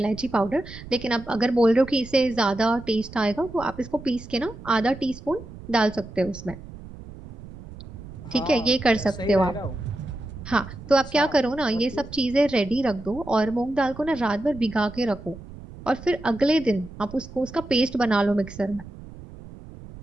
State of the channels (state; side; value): noise; right; rumble, 15 dB below the sound